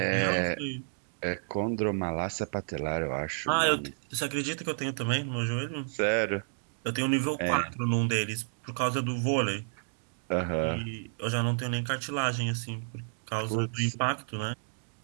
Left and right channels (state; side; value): silent; left; digital silence